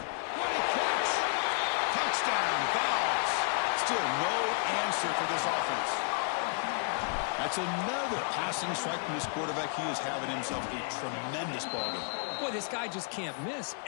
a catch! Touchdown, Vols. Still no answer for this offense. That's another passing strike from this quarterback. He is having himself a tremendous ball game. Boy, this guy just can't miss.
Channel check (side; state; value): right; silent; 57 dB below the other